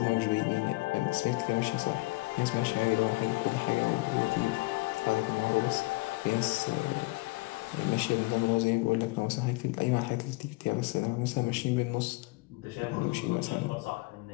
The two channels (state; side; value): quieter; right; 23.7 dB